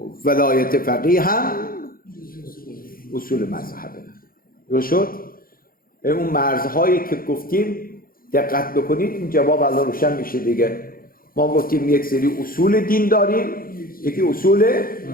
ولایت فقیه هم اصول مذهبه. درست شد؟ اون مرزهایی که گفتیم دقت بکنید این جواب الله روشن میشه دیگه. ما گفتیم یک سری اصول دین داریم، یکی اصول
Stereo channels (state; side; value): late; right; 0.42 ms